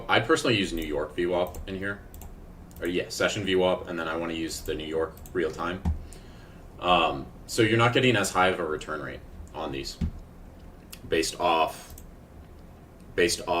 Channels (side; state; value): both; identical; correlation 1.00